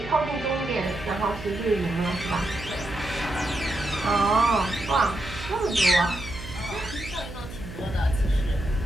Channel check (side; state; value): right; noise; hum, 12 dB below the sound